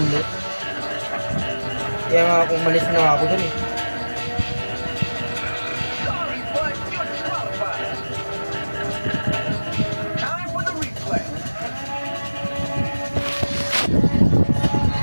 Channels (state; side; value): inverted; both; correlation -1.00